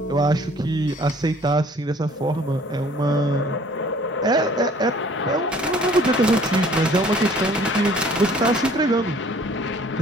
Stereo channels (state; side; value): normal; both; correlation 0.55